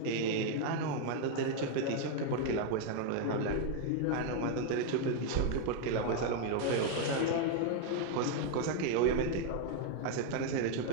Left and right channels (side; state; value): both; different; correlation 0.00